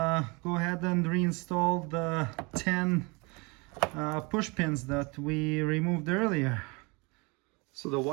ahead and reinstall the 10 push pins that we removed earlier. So the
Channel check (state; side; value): quieter; left; 28.2 dB